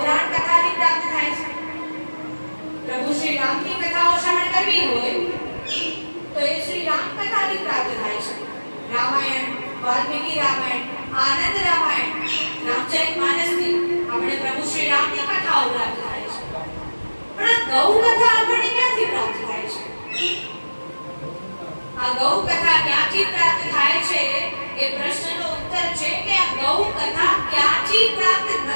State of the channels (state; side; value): inverted; both; correlation -1.00